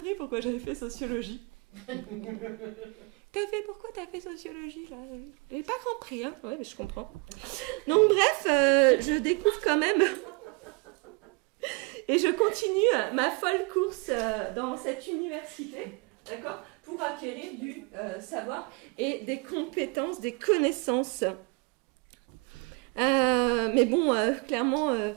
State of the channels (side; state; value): left; quieter; 30.9 dB